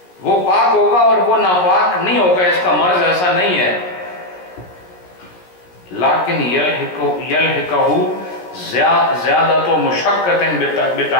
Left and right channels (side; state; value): right; late; 17 ms